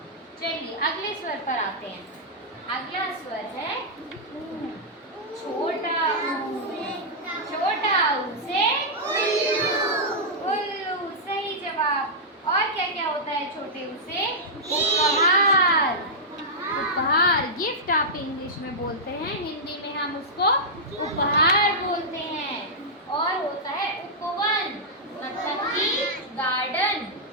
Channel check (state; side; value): normal; both; correlation -0.09